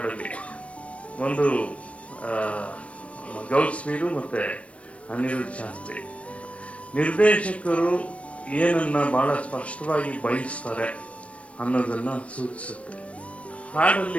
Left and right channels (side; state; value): right; late; 0.063 ms